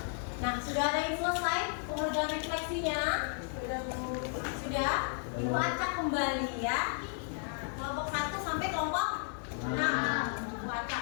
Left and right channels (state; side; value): silent; right; 55 dB below the other